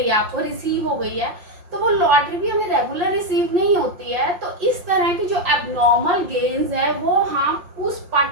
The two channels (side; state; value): left; late; 5.6 ms